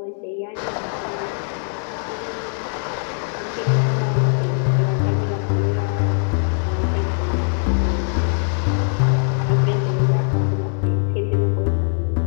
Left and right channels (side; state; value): right; silent; 65 dB below the other